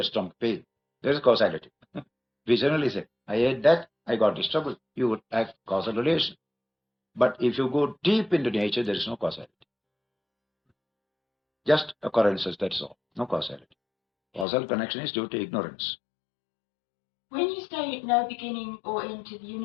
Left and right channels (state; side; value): drops out; right; at 14.5 s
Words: stomach pain. There is causality. We generally say, I ate that, I got this trouble. You would have causal relation. But if you go deep into nature, there is no causality. Just occurrences, that's all. No causality. Causal connection is due to ignorance. When you say no beginning or end to the